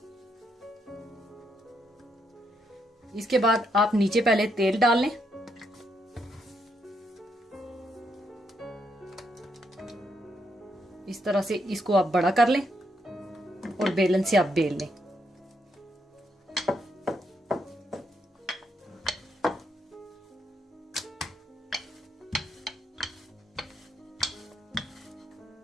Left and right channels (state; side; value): normal; both; correlation 0.78